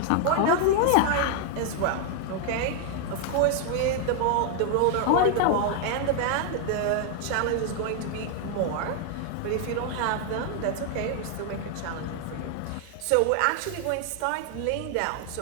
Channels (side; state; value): both; different; correlation 0.00